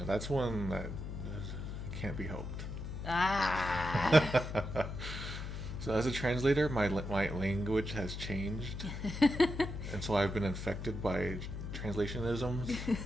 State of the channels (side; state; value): left; noise; hum, 7 dB below the sound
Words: that's one that can't be helped. Ah! So as a translator, my language has changed. And so I've been infected by translationisms.